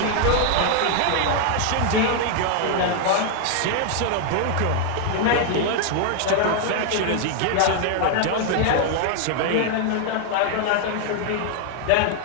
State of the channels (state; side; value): different; both; correlation 0.00